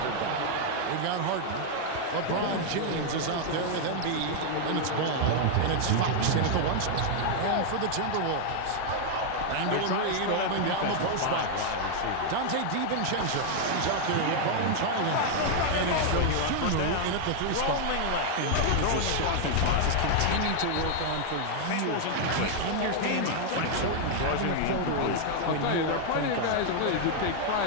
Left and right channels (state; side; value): different; both; correlation 0.00